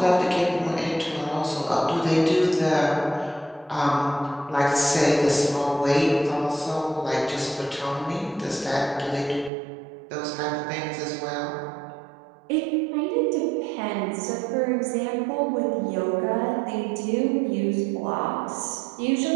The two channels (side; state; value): left; drops out; at 9.5 s